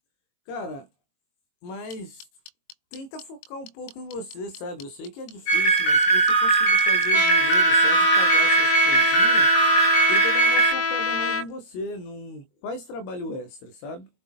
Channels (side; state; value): right; late; 22 ms